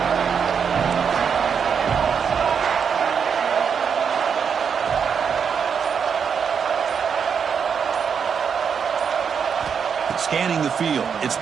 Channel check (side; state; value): left; quieter; 6.8 dB